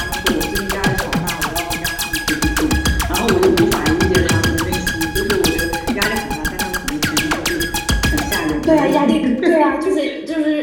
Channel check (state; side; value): identical; both; correlation 1.00